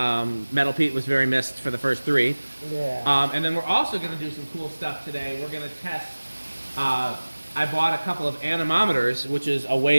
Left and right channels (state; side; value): inverted; both; correlation -1.00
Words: Pete was very missed for the first 3. Yeah. And then we're also going to do some cool stuff today. We're going to test. I bought a couple of anemometers, which is a